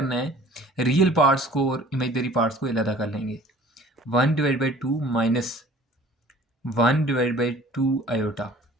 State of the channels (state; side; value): normal; both; correlation 0.49